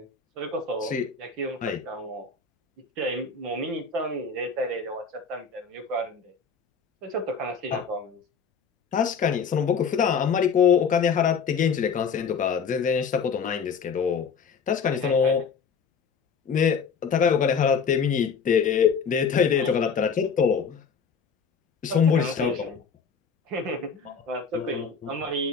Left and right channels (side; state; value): right; quieter; 5.9 dB